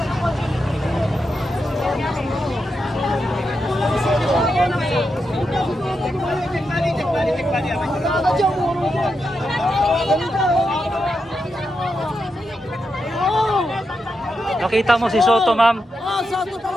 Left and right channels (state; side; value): normal; both; correlation 0.86